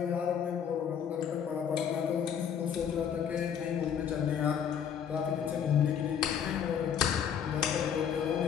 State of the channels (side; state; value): right; quieter; 8.1 dB